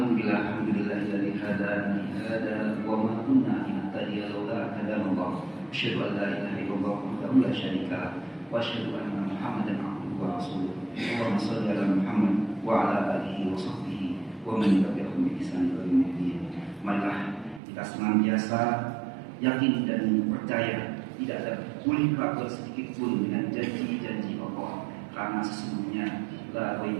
hadana li hada wa ma kunna linahtadiya laula an hadana Allah. Asyhadu an la ilaha illallah wahdahu la syarika lah wa asyhadu anna Muhammadan abduhu wa rasuluh. Allahumma shalli ala Muhammad wa ala alihi wa sahbihi wa man tabi'ahum bi ihsan ila yaumil. Marilah kita senantiasa yakin dan percaya tidak ada boleh keraguan sedikit pun dengan janji-janji Allah, karena sesungguhnya la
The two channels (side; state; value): left; drops out; at 17.6 s